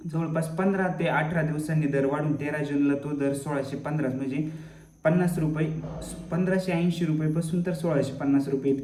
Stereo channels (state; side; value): identical; both; correlation 1.00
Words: 15 ते 18 दिवसांनी दर वाढून 13 जूनला तो दर 1615 म्हणजे 50 रुपये, 1580 रुपयेपासून तर 1650 रुपये